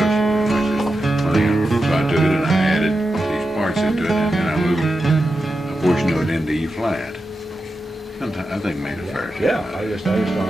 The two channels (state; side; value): normal; both; correlation 0.90